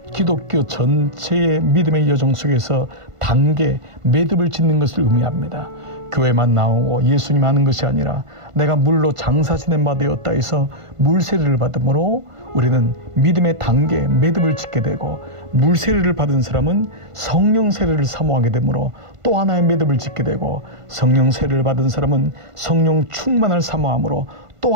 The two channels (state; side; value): late; left; 1.5 ms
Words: 기독교 전체의 믿음의 여정 속에서 단계, 매듭을 짓는 것을 의미합니다. 교회만 나오고 예수님 하는 것이 아니라 내가 물로 장사 지낸 바 되었다 해서 물세례를 받음으로 우리는 믿음의 단계, 매듭을 짓게 되고, 물세례를 받은 사람은 성령 세례를 사모하게 되므로 또 하나의 매듭을 짓게 되고, 성령 세례를 받은 사람은 성령 충만을 사모함으로 또